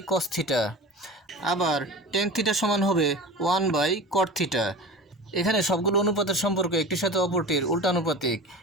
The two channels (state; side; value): normal; both; correlation 0.33